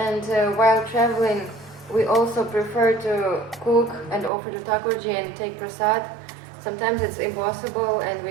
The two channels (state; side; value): drops out; left; at 4.3 s